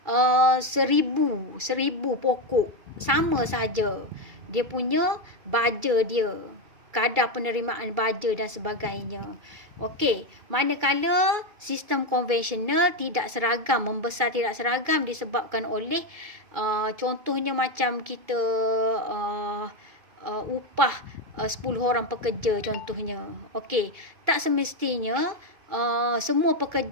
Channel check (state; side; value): late; left; 2.3 ms